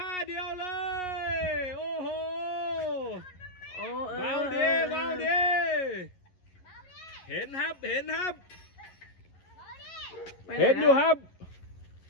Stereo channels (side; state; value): right; late; 11 ms